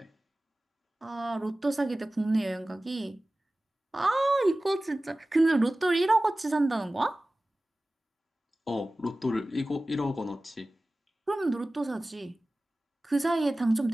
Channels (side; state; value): both; normal; correlation 0.97